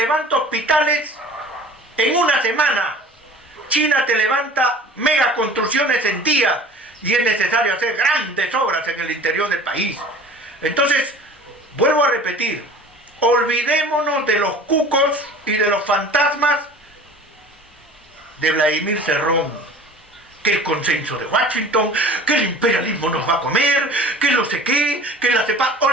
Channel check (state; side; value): normal; both; correlation 0.43